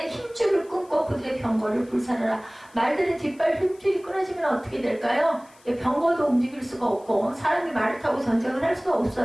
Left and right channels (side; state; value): left; noise; hiss, 28 dB below the sound